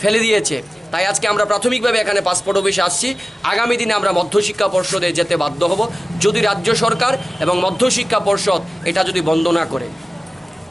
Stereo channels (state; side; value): normal; both; correlation 0.96